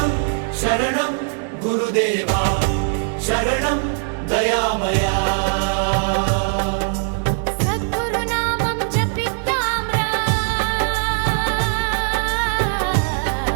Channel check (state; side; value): silent; left; 61 dB below the other